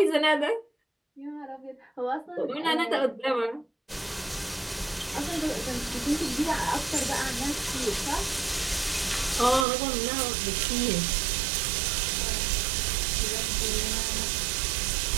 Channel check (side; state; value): left; drops out; at 9.7 s